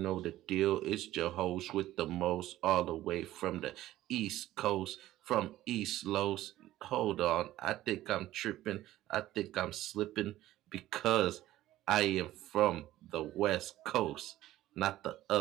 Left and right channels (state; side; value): quieter; left; 14.8 dB